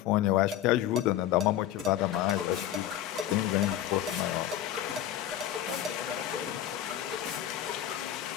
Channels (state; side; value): quieter; right; 11.8 dB